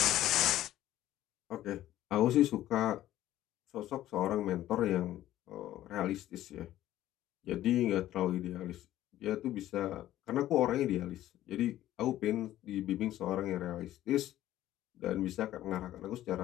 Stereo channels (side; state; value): right; quieter; 13.7 dB